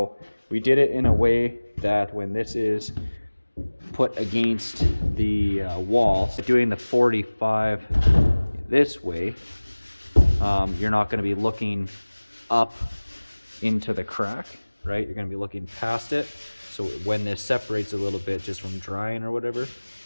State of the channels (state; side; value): inverted; both; correlation -1.00